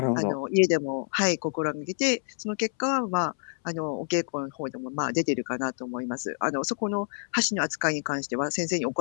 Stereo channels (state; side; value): silent; right; 60 dB below the other